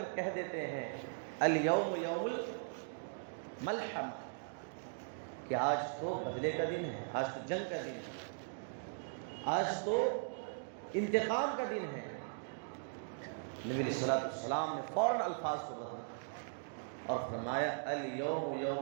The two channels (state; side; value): silent; left; digital silence